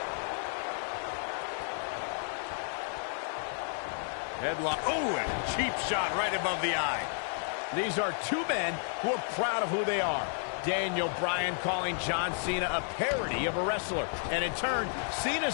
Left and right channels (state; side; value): silent; right; 57 dB below the other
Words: Headlock. Oh, and a cheap shot right above the eye. These are two men who are proud of who they are. Daniel Bryan calling John Cena a parody of a wrestler. And in turn, Cena